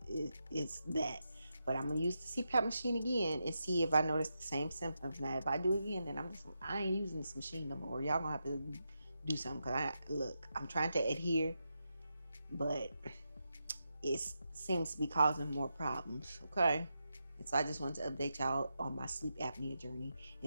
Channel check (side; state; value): both; inverted; correlation -0.86